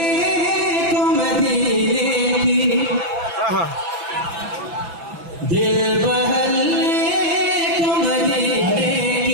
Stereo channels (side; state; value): left; late; 6.0 ms